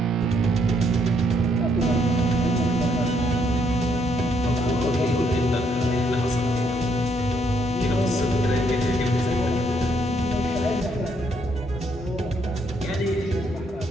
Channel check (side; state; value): both; normal; correlation 0.72